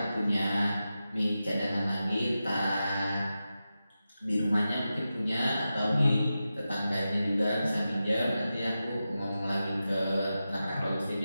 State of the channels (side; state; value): both; inverted; correlation -0.92